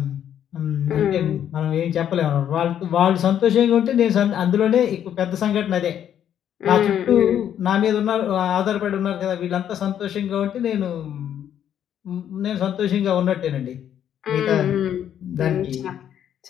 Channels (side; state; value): right; quieter; 9.9 dB